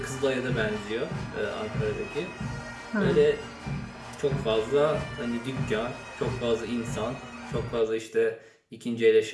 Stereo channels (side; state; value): both; identical; correlation 1.00